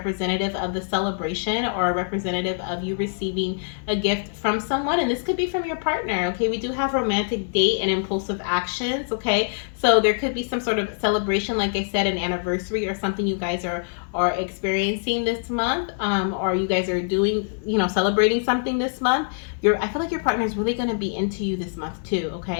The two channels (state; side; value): silent; right; digital silence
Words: of the celebration, or representative of you receiving a gift from someone. And this could be from your partner, okay? We do have romantic date and impulsive actions, okay? So there could be some sort of celebration, like I said, an anniversary or something you guys are experiencing this month, or you guys are doing, celebrating something this month. I feel like your partner is really going to be into you this month too,